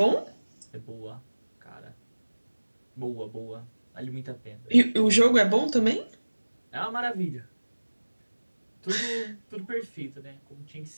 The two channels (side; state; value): both; inverted; correlation -1.00